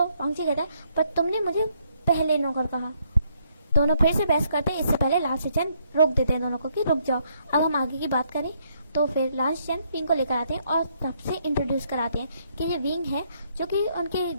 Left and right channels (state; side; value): inverted; both; correlation -0.72